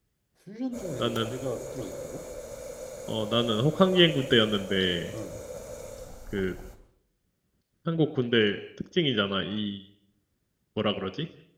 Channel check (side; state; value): both; identical; correlation 1.00